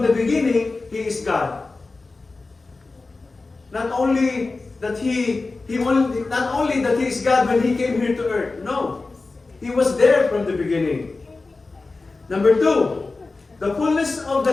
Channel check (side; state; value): right; quieter; 3.7 dB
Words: the beginning, He is God. Not only that He is God when He came here to earth. No. He was there from the beginning. Number two, the fullness of the